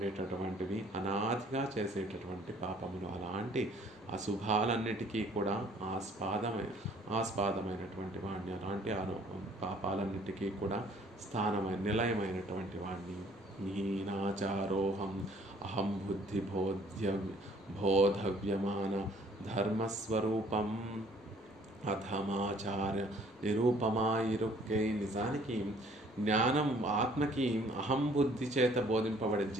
అనాదిగా చేసేటటువంటి పాపములు. అలాంటి అశుభాలన్నిటికీ కూడా ఆస్పాదమైనటువంటి వాడిని, అలాంటి పాపాలన్నిటికీ కూడా నిలయమైనటువంటి వాడిని. హీనాచారోహం అహం బుద్ధి బోధవ్యమాన ధర్మస్వరూపం అధమాచార్య నిరూపమాయిరుక్కై. నిజానికి జ్ఞానం ఆత్మకి అహం బుద్ధి చేత బోధింపబడే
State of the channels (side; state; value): both; normal; correlation 0.59